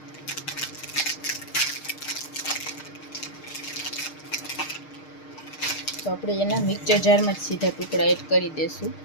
તો આપણે એના મિક્સર જારમાં જ સીધા ટુકડા એડ કરી દઈશું.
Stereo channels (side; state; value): right; late; 6.5 ms